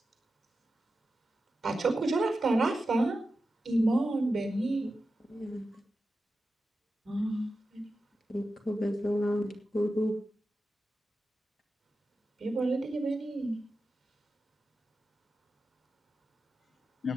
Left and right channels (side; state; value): both; normal; correlation 0.92